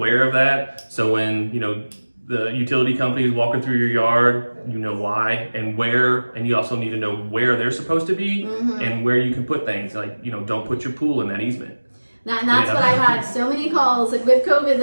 of that. So when, the utility company is walking through your yard, you know why and where, and you also need to know where they're supposed to be and where you can put things. Like, don't put your pool in that easement. And that's what I've had so many calls, like with COVID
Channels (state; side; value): inverted; both; correlation -1.00